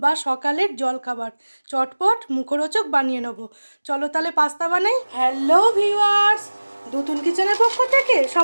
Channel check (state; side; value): inverted; both; correlation -1.00